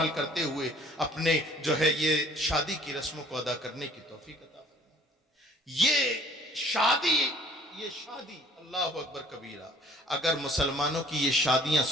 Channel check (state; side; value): normal; both; correlation 0.54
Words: کرتے ہوئے اپنے جو ہے یہ شادی کی رسموں کو ادا کرنے کی توفیق عطا فرمائے. یہ شادی اللہ اکبر کبیرہ، اگر مسلمانوں کی یہ شادیاں